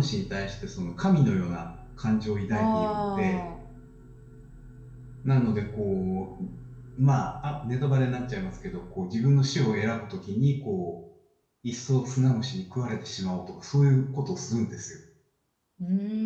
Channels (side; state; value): both; identical; correlation 1.00